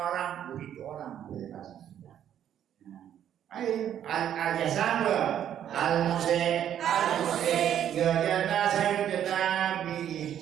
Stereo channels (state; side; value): quieter; left; 10.2 dB